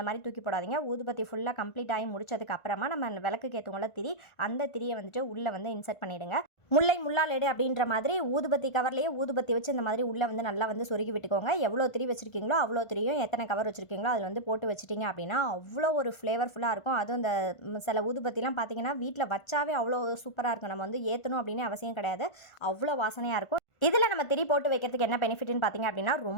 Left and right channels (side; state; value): right; late; 1.5 ms